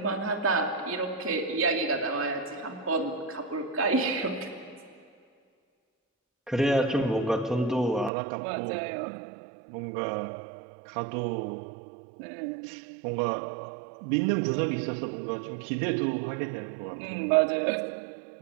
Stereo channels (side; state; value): left; drops out; at 8.1 s